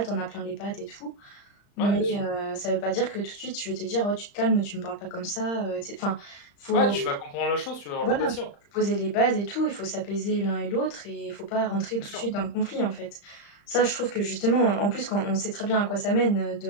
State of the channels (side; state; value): right; late; 35 ms